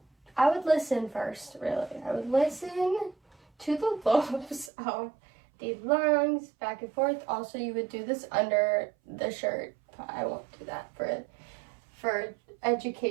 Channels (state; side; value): drops out; left; at 4.7 s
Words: would listen first, really. I would listen to the lobes of the lungs, back and forth. Also, you would do this under the shirt. I won't do that for